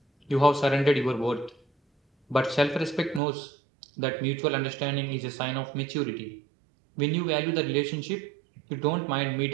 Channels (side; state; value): left; drops out; at 3.2 s